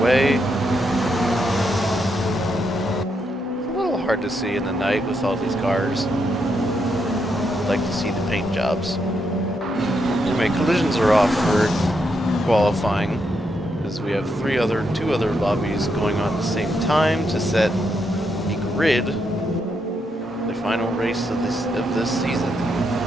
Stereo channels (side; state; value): both; normal; correlation 0.80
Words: It's a little hard to see in the night with all these cars. I'd like to see the paint jobs. Anyway, collisions are off for qualifying, as we have two other lobbies going on at the same time to set the grid, the final race of this season.